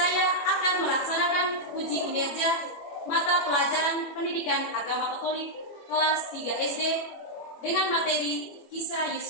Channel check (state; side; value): late; right; 21 ms